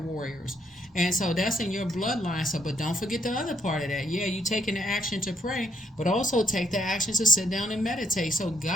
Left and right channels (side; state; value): both; normal; correlation 0.72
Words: And so that's in your bloodline. So, but don't forget the other part of that. Yeah, you taking the action to pray, but also take the action to sit down and meditate. So